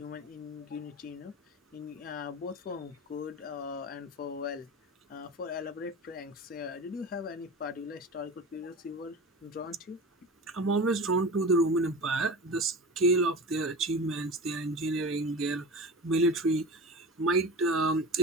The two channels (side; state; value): both; normal; correlation 0.31